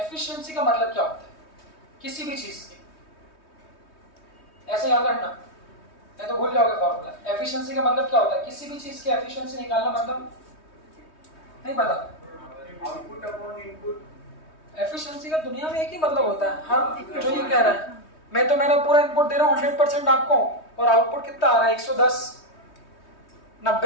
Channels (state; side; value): late; right; 3.2 ms